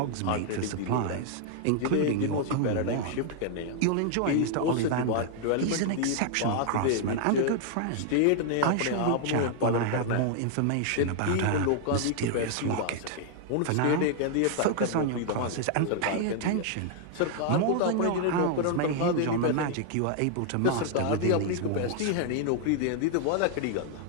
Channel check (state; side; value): different; both; correlation 0.00